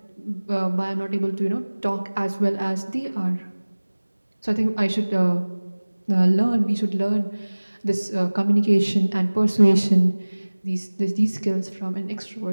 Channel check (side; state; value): both; inverted; correlation -1.00